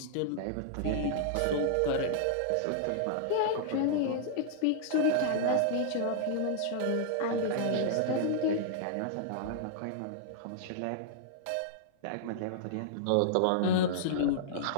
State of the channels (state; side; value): different; both; correlation -0.01